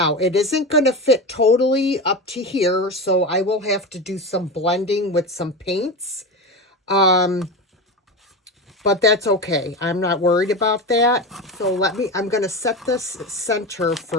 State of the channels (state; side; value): normal; both; correlation 0.22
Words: it isn't going to fit totally up to here, so I will have to do some blending with some paints. But that's okay. I'm not worried about that. So I'm going to set this center